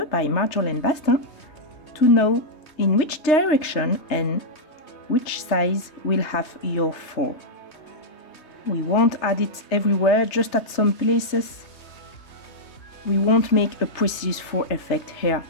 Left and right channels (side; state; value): right; late; 3.2 ms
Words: by Marjolaine Bastin to know in which direction and which size will have your fur. We won't add it everywhere, just at some places. We won't make a precise fur effect here.